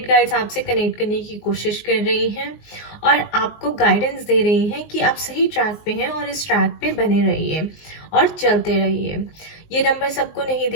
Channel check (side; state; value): right; late; 19 ms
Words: गाइड्स आपसे कनेक्ट करने की कोशिश कर रही हैं और आपको गाइडेंस दे रही हैं कि आप सही ट्रैक पे हैं और इस ट्रैक पे बने रहिए और चलते रहिए। ये नंबर सबको नहीं